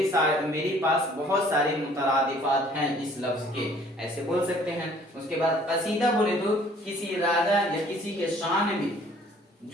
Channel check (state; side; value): normal; both; correlation 0.56